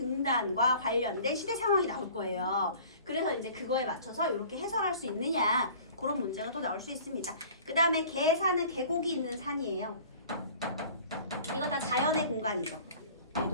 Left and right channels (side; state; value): both; inverted; correlation -0.46